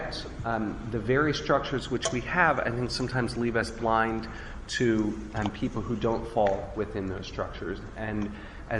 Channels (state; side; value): identical; both; correlation 1.00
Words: the very structures which we have, I think, sometimes leave us blind to people who don't fall within those structures. And